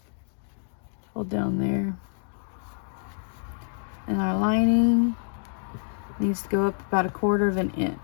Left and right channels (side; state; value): right; silent; 60 dB below the other